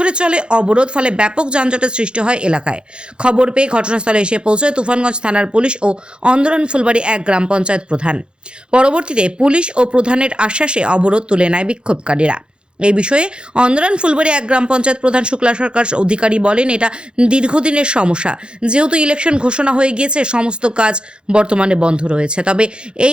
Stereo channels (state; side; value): late; left; 0.052 ms